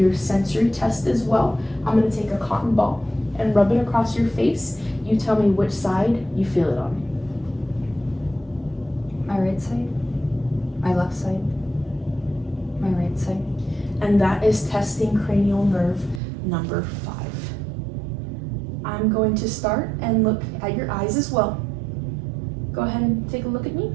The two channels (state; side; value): drops out; left; at 16.2 s